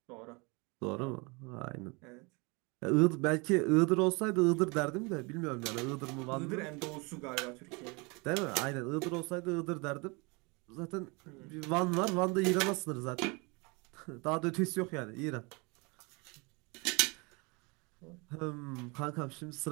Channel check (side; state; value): left; quieter; 28.6 dB